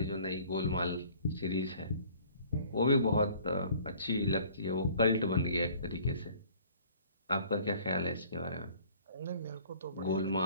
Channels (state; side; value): inverted; both; correlation -0.53